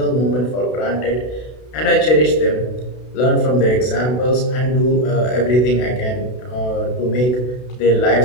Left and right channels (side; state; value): right; late; 32 ms